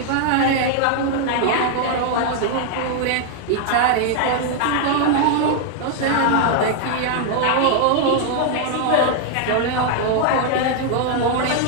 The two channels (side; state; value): both; different; correlation 0.00